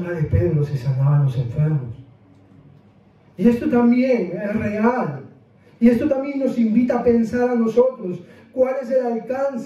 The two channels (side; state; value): both; identical; correlation 1.00